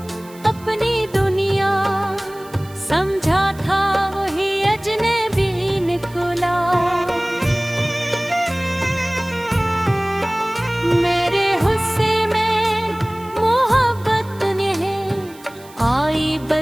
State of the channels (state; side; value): noise; right; hiss, 23 dB below the sound